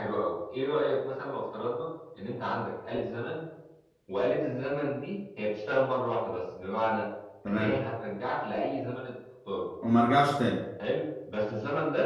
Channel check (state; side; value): identical; both; correlation 1.00